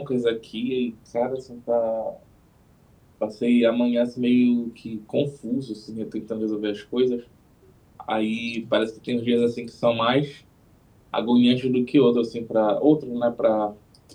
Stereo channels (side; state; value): both; identical; correlation 1.00